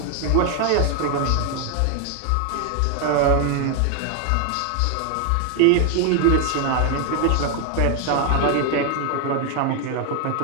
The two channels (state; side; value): different; both; correlation 0.01